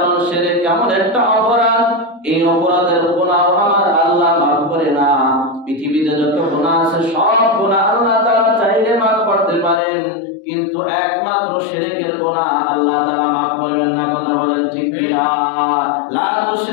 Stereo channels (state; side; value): drops out; right; at 9.8 s